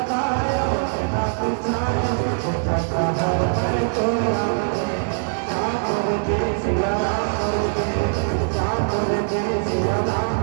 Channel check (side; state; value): left; silent; 64 dB below the other